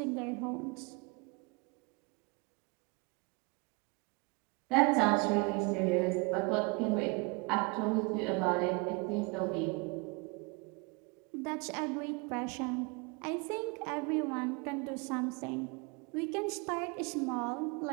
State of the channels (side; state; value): left; quieter; 29.5 dB